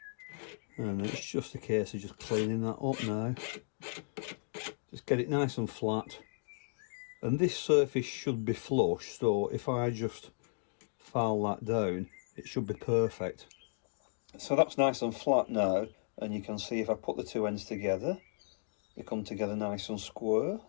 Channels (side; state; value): right; silent; digital silence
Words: And it's just a case of just cleaning that up now. Just get it nice and flat, and this surface should be flush, so if I just file that down it should be perfect. So that's nice and flat now, and you can see if I put the two ends together they come together nice and square